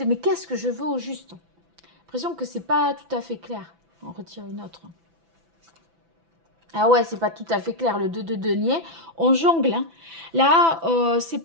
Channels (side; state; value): left; late; 6.0 ms